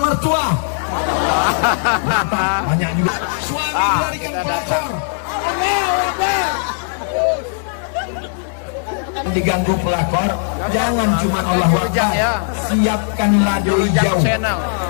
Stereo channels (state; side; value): silent; right; 64 dB below the other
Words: Banyak juga suami melarikan pelakor. Diganggu pelakor, jangan cuma Allahu Akbar, siapkanlah doi jauh